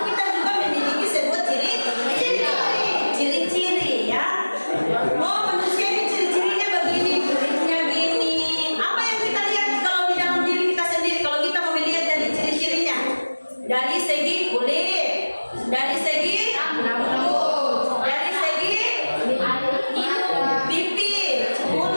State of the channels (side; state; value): both; inverted; correlation -1.00